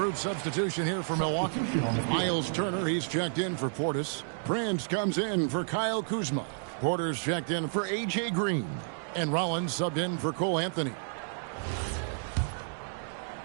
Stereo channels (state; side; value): silent; left; digital silence